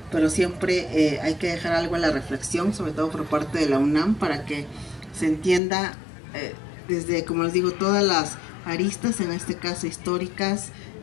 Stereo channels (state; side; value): drops out; right; at 5.6 s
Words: pero siempre hay que dejar algo a la reflexión, sobre todo por parte de la UNAM, para que se entienda desde, como les digo, todas las aristas, en este caso históricas,